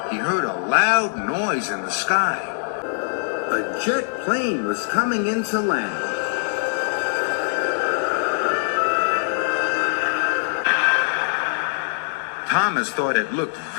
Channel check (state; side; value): silent; right; digital silence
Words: he heard a loud noise in the sky. A jet plane was coming into land. Thomas thought it looked